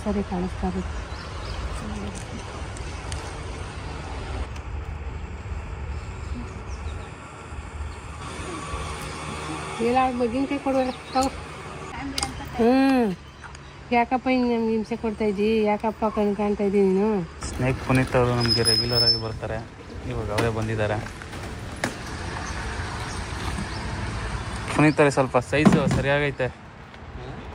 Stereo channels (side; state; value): both; identical; correlation 1.00